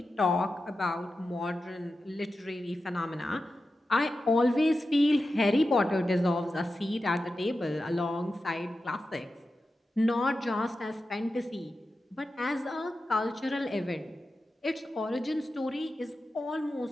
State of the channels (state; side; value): normal; both; correlation 0.92